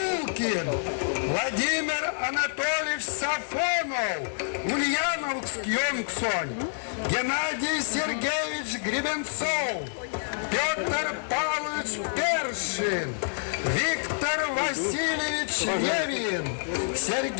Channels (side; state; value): right; silent; 60 dB below the other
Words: Владимир Анатольевич Сафонов, Ульяновск Йонгсонь, Геннадий Сергеевич Гребенцов, Петр Павлович Першин, Виктор Васильевич Левин,